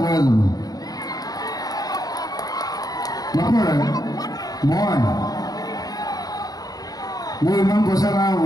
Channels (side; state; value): right; late; 0.18 ms